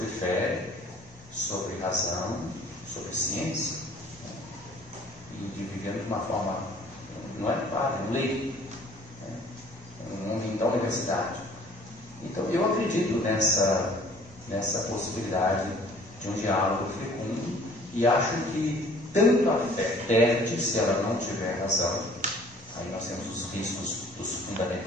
fé, sobre razão, sobre ciência, né? E vivendo de uma forma, não é padre, um leigo, né? Um homem da universidade. Então eu acredito nessa possibilidade de um diálogo fecundo e acho que tanto a fé perde se ela não tiver razão. Aí nós temos os riscos dos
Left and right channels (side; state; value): both; normal; correlation 0.54